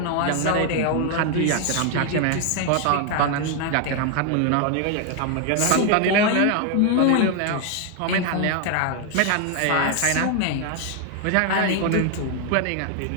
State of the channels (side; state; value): both; different; correlation 0.00